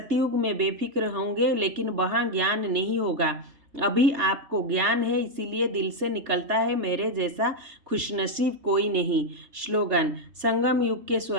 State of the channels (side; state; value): left; late; 3.3 ms